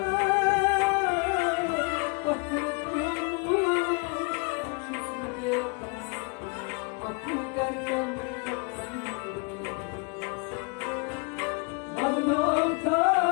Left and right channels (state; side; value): quieter; right; 31.8 dB